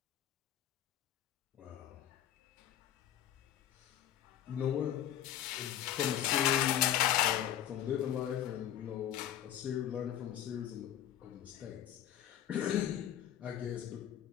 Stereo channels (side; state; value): right; quieter; 11.4 dB